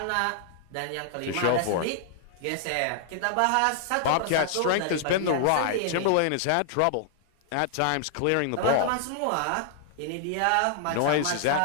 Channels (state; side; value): different; both; correlation -0.01